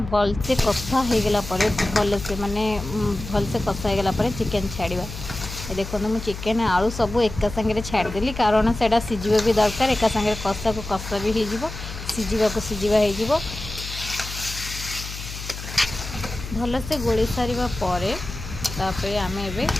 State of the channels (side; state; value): left; noise; hum, 10 dB below the sound